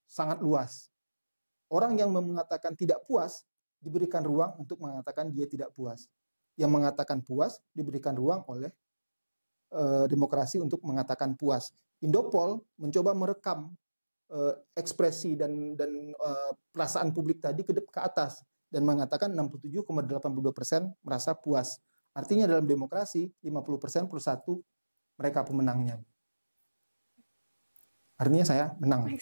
sangat luas. Orang yang mengatakan tidak puas diberikan ruang untuk mengatakan dia tidak puas. Yang mengatakan puas diberikan ruang oleh demokrasi untuk mengatakan puas. Indopol mencoba merekam ekspresi dan perasaan publik tadi ke atas dan mengatakan 67,82% merasa puas. Artinya dalam demokrasi 50% plus 1 mereka pemenangnya. Artinya saya menang.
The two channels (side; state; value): both; inverted; correlation -1.00